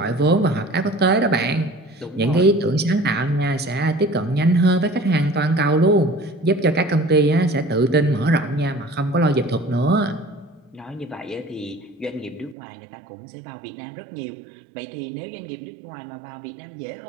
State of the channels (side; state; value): left; drops out; at 12.6 s